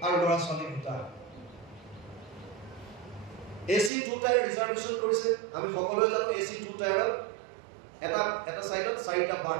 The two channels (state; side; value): drops out; left; at 3.9 s